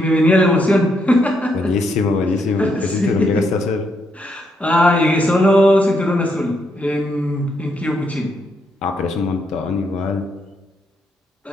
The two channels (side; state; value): both; normal; correlation 0.77